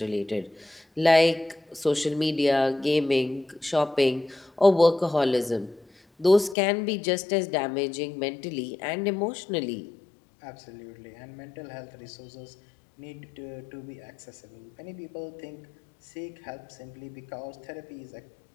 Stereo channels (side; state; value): right; drops out; at 6.6 s